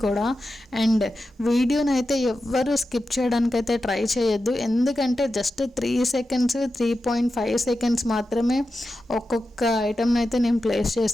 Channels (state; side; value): normal; both; correlation 0.91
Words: కూడా. అండ్ వీడియోని అయితే ఎవ్వరూ స్కిప్ చేయడానికైతే ట్రై చేయొద్దు, ఎందుకంటే జస్ట్ 3 seconds 3.5 seconds మాత్రమే ఒక్కొక్క ఐటమ్ని అయితే నేను ప్లేస్